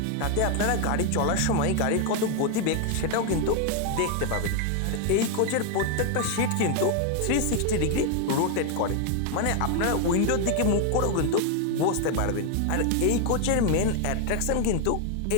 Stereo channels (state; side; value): different; both; correlation 0.01